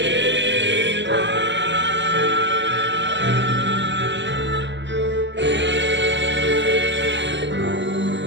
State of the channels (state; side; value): late; left; 0.53 ms